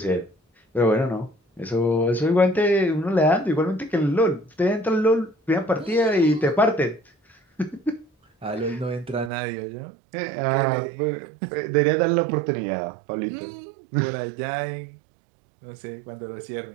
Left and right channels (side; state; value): left; drops out; at 9.3 s